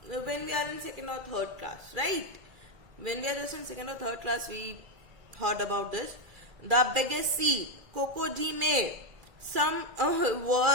when we are in 2nd or 3rd class, right? When we are just in 2nd or 3rd class, we heard about this. The biggest sea, crocodile. Some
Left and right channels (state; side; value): late; left; 1.9 ms